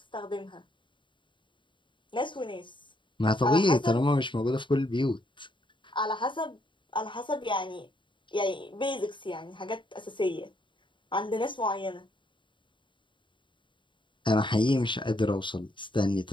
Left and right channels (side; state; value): right; late; 0.23 ms